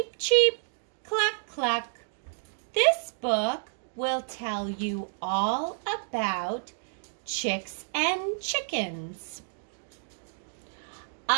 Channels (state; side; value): silent; left; digital silence